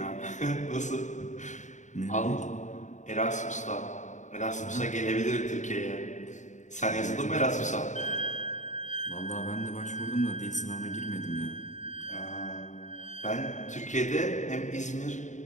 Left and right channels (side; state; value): right; late; 0.35 ms